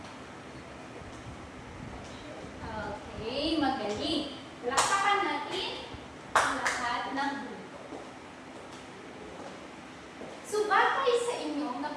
Okay, magaling. Lapakan natin ang lahat ng grupo. So, batay sa inyong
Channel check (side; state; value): both; identical; correlation 1.00